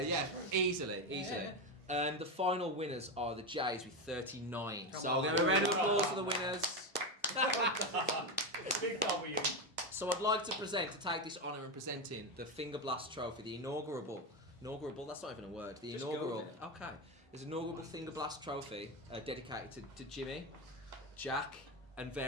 easily. The final winners are the Jays with 39. So I'll give a round of applause for the winners. Big W. So I'd like to take this honour in presenting the Fingerblast Trophy, the inaugural, that's not even a word, the Just inaugural, go with it. okay, there's an inaugural Fingerblast Trophy dedicated to Jimi, Jack, and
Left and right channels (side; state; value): both; normal; correlation 0.13